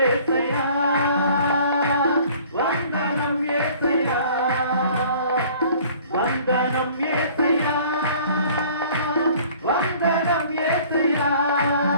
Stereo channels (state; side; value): inverted; both; correlation -0.52